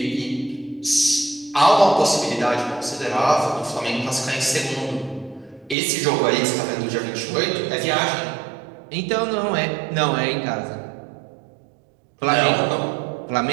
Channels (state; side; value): drops out; left; at 5.8 s